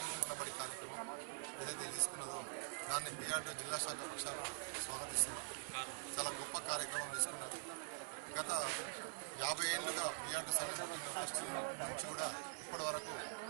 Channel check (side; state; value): left; silent; digital silence